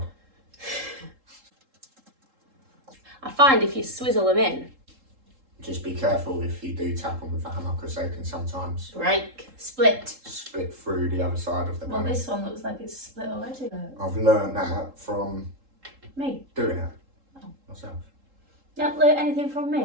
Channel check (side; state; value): left; late; 3.7 ms